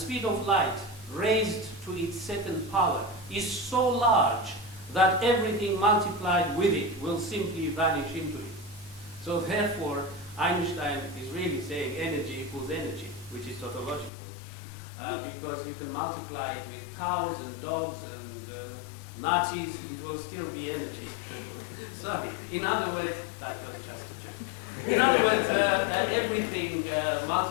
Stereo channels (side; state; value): right; drops out; at 14.1 s